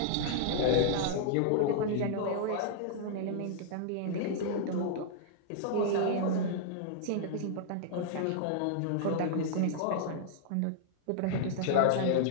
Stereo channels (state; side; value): different; both; correlation -0.01